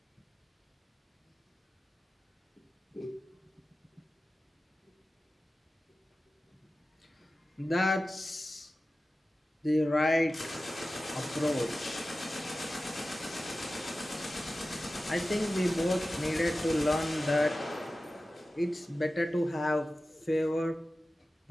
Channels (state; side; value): normal; both; correlation 0.95